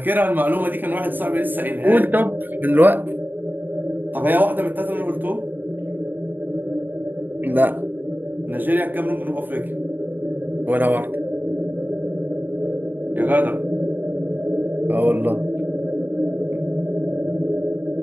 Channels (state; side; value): late; left; 0.090 ms